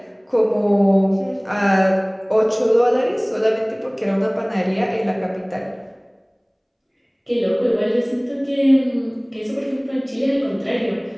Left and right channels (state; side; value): identical; both; correlation 1.00